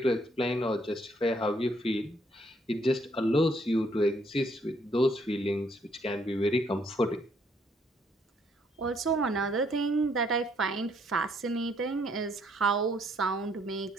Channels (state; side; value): normal; both; correlation 0.68